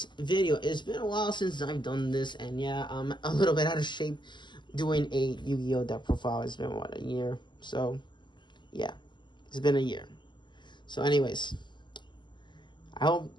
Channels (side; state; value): right; late; 0.22 ms